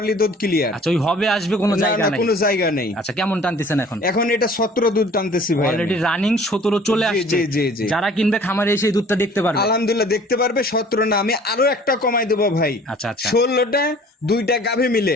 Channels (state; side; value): normal; both; correlation 0.50